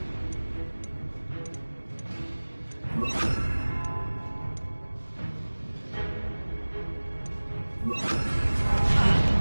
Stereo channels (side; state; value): both; inverted; correlation -1.00